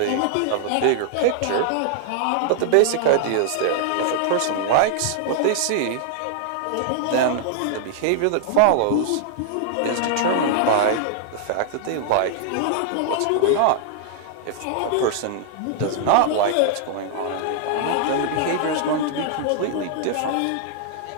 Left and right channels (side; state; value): both; different; correlation -0.01